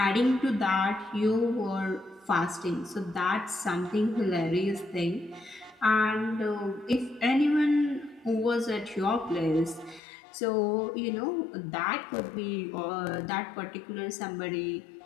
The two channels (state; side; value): drops out; right; at 10.0 s